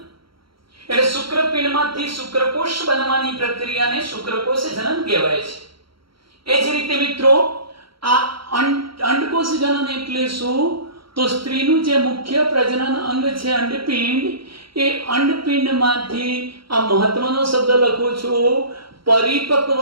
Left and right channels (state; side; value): late; left; 0.74 ms